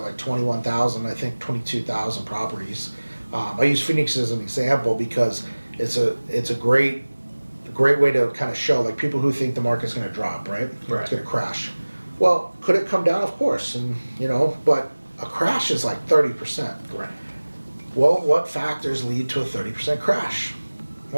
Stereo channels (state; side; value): inverted; both; correlation -1.00